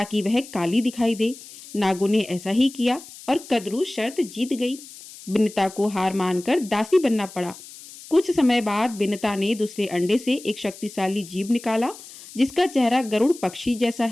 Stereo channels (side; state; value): left; noise; hiss, 17 dB below the sound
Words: वह काली दिखाई दे। नागों ने ऐसा ही किया और कंद्रु शर्त जीत गई। विनता को हार मानकर दासी बनना पड़ा। कुछ समय बाद विनता ने दूसरे अंडे से एक शक्तिशाली जीव निकाला जिसका चेहरा गरुड़ पक्षी जैसा